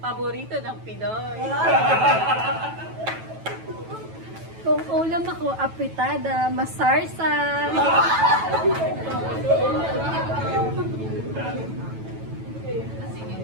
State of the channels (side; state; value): left; late; 9.1 ms